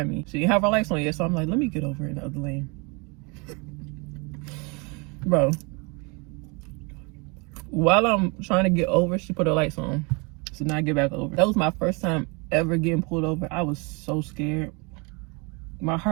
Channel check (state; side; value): quieter; left; 30.2 dB